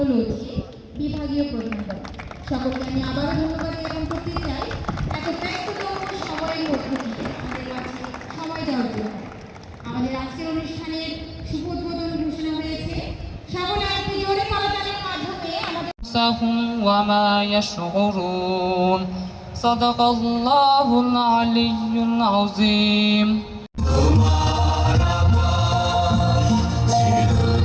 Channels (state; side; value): identical; both; correlation 1.00